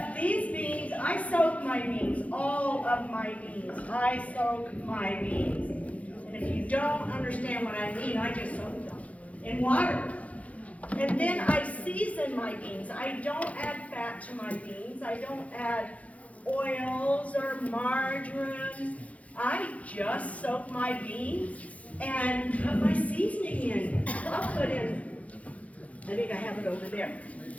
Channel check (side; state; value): right; late; 0.067 ms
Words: these beans, I soak my beans, all of my beans. I soak my beans. And if you don't understand what I mean, I just soak them in water. And then I season my beans. I don't add fat to my beans. I don't add oils or margarine. I just soak my beans and put my seasoning in. I'll put in, I think I have it over there,